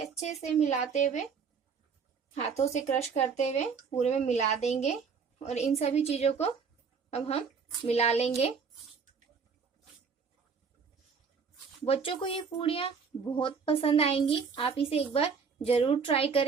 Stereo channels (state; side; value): quieter; left; 5.7 dB